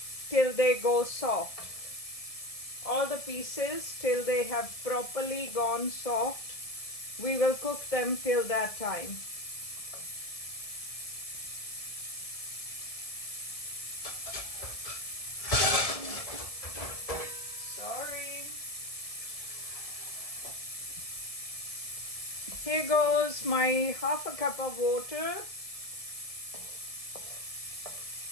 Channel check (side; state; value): right; late; 1.7 ms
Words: till they go soft. All the pieces till they have properly gone soft. We will cook them till that time. Sorry. Here goes my half a cup of water.